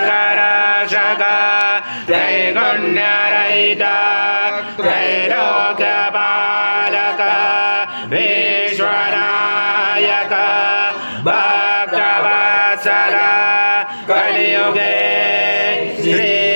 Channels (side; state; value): both; inverted; correlation -1.00